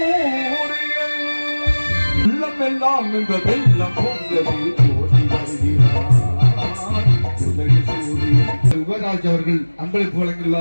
உள்ளமெல்லாம் இந்த வெள்ளம் யுவராஜ் அவர்கள் அன்பளிப்பு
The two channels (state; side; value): inverted; both; correlation -1.00